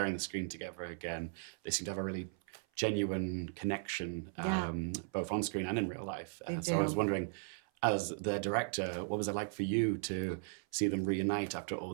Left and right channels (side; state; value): left; silent; 53 dB below the other